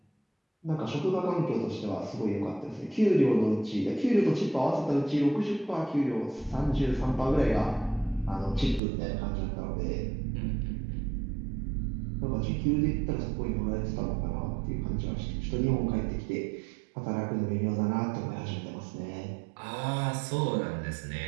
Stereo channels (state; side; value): drops out; left; at 8.8 s